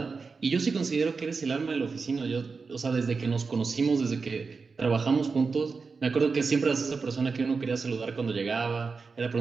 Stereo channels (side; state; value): left; quieter; 4.7 dB